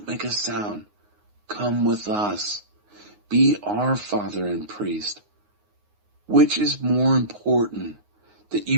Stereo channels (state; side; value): late; left; 9.6 ms